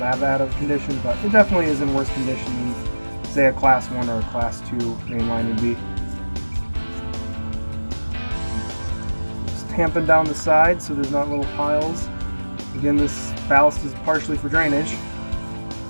bad of condition, but it definitely is in worse condition than, say, a Class 1 or a Class 2 main line would be. Just tamping down the sides so there's not little piles. Again, this ballast is partially for drainage.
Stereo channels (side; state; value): both; inverted; correlation -1.00